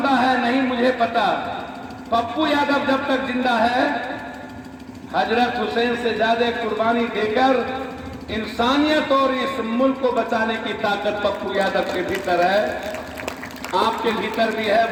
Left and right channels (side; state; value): both; identical; correlation 1.00